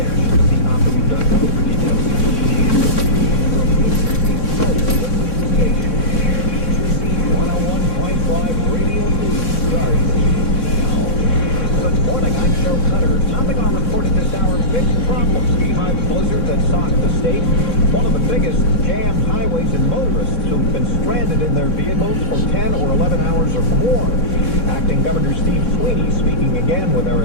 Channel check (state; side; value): late; right; 3.6 ms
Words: See optimum.com for details. From New Jersey, the station. 101.5 Radio News starts now. Good morning, I'm Joe Cutter. Topping our report at this hour, big problems behind the blizzard that socked the state. One of the biggest jammed highways and motorists who've been stranded in their vehicles for 10 or 11 hours or more. Acting Governor Steve Sweeney speaking again with